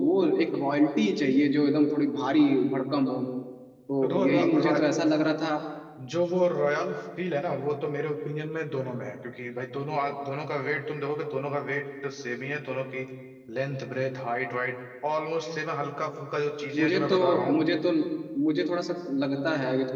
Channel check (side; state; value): both; identical; correlation 1.00